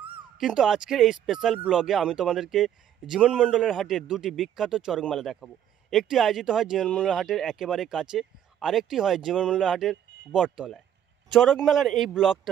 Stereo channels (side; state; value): left; quieter; 10.2 dB